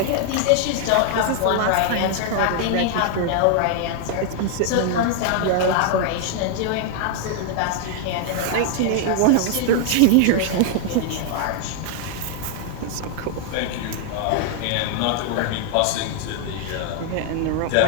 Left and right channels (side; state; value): both; different; correlation 0.00